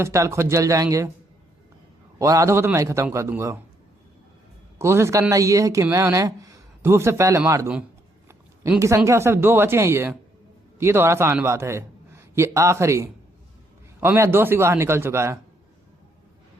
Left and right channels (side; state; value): both; normal; correlation 0.72